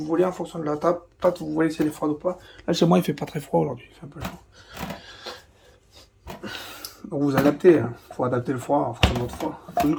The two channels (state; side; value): identical; both; correlation 1.00